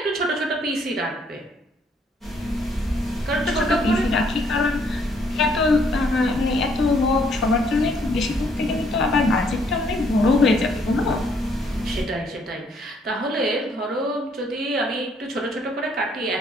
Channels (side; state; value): both; normal; correlation 0.67